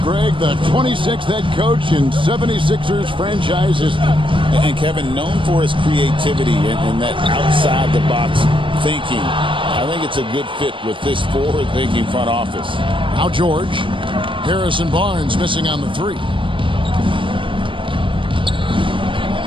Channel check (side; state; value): left; late; 0.25 ms